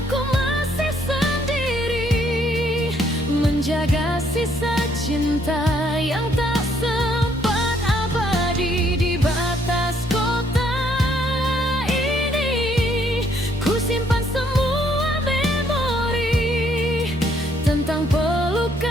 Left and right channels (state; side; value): normal; both; correlation 0.68